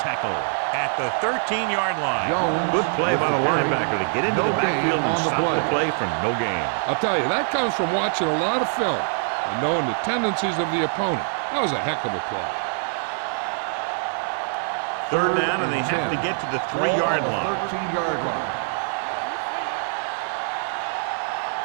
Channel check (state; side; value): silent; left; 57 dB below the other